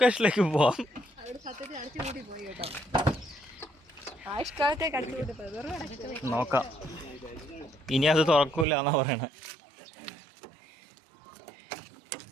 പോവാം. നോക്കാം, ഇനി അത് തുറക്കൂല എന്നാ പറയണേ.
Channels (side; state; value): left; drops out; at 8.7 s